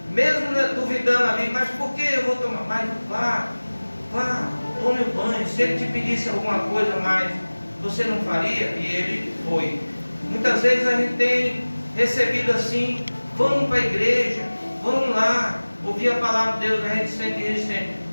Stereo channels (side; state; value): both; inverted; correlation -1.00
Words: mesmo duvidando ali, mas por que eu vou tomar? Mas vá, tome o banho. Se ele te pedisse alguma coisa mais, você não faria? E ele foi. Muitas vezes a gente tem recebido assim: vamos para a igreja, vamos lá, ouvir a palavra de Deus, a gente sente resistente.